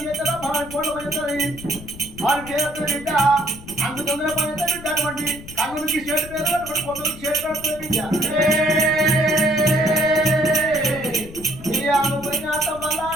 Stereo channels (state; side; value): noise; left; rumble, 16 dB below the sound